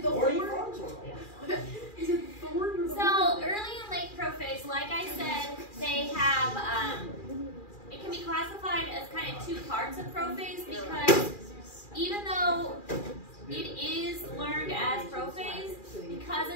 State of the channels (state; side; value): late; right; 2.4 ms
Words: the Horny horn? Frogs or Is it thorn or the So horn? early and late prophase, like I said, they have. It can be classified as kind of two parts of prophase, because even though it is learned as prophase, because